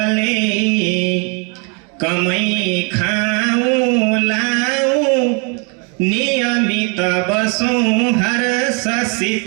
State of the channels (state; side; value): quieter; left; 34.5 dB